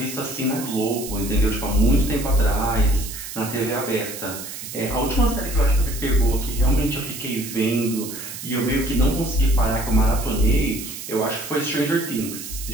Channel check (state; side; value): noise; right; hiss, 10 dB below the sound